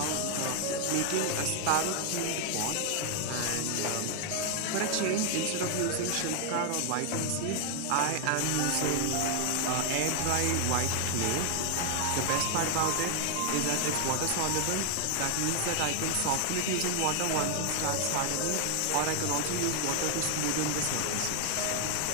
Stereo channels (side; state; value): both; different; correlation 0.00